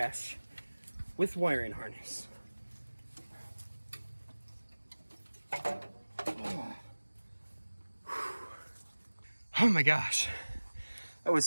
with wiring harness. Oh my gosh, that was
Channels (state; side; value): inverted; both; correlation -1.00